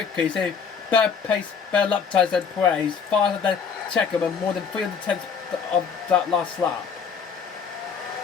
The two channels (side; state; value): right; quieter; 6.3 dB